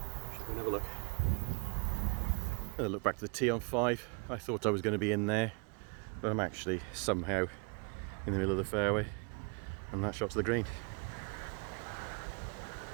Another look. Look back to the tee on 5. I thought I was going to be in there, but I'm actually somehow in the middle of the fairway, and that shot to the green.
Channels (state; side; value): quieter; left; 34.4 dB